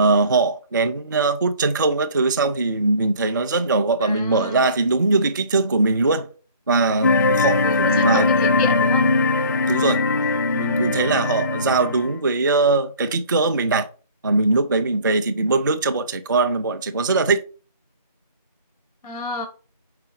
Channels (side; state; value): both; inverted; correlation -0.48